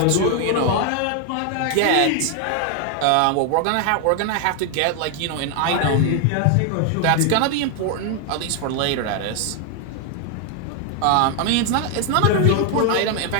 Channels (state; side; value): different; both; correlation 0.01